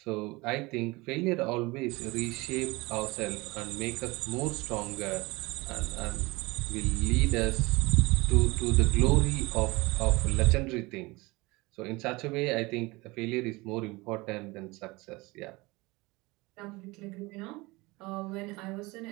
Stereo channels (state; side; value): quieter; left; 23.2 dB